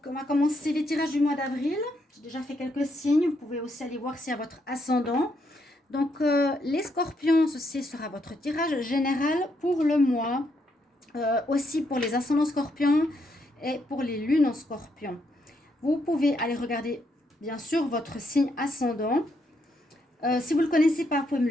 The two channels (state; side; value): normal; both; correlation 0.76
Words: on va commencer les tirages du mois d'avril. J'ai déjà fait quelques signes. Vous pouvez aussi aller voir s'il y a votre ascendant. Donc, les Scorpions, ceci sera votre tirage général pour le mois. Aussi pour les ascendants Scorpions et pour les lunes en Scorpion. Vous pouvez aller regarder, bien sûr, votre signe ascendant. Si vous ne le connaissez pas, vous pouvez me